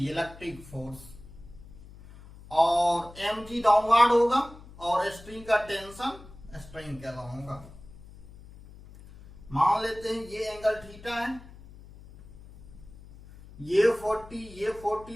इलेक्ट्रिक फोर्स, और mg डाउनवर्ड होगा, और स्ट्रिंग का टेंशन स्ट्रिंग के अलावा होगा। मान लेते हैं ये एंगल थीटा है, ये 40 ये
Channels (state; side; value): noise; left; hum, 19 dB below the sound